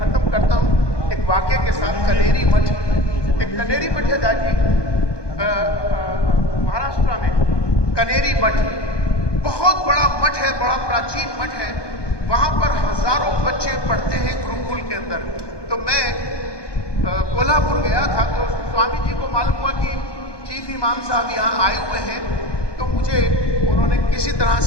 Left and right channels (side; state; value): right; late; 1.2 ms